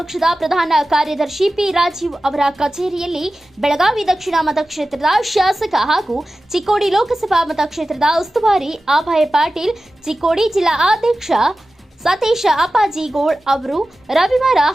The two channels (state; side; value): normal; both; correlation 0.94